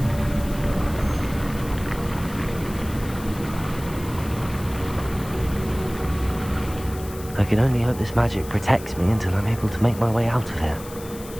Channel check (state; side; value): noise; left; hiss, 16 dB below the sound